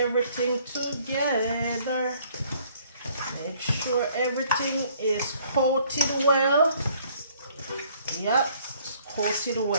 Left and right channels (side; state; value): both; inverted; correlation -0.60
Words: together. Make sure everything is coated well. Yep, it's coated